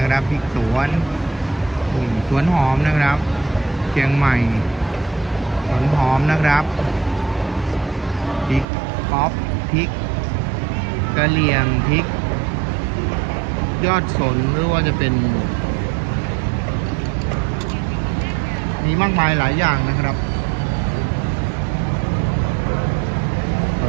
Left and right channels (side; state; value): left; drops out; at 8.7 s